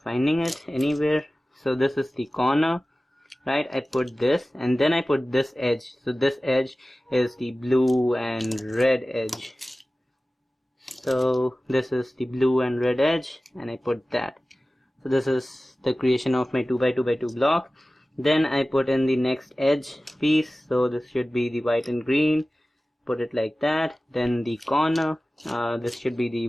it anywhere, so this is the corner, right? I put this, and then I put this edge. So this edge is the blue and red edge. So this is the blue and red edge, and I put that. So this is the creation of my 2x2x2 block. Then I put in the next edge piece, so this should be the white and green, put it like that. Then the corner, this should be the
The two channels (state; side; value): normal; both; correlation 0.96